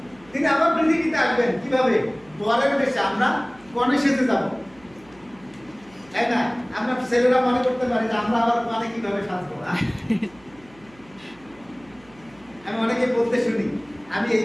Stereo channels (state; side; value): noise; right; hum, 27 dB below the sound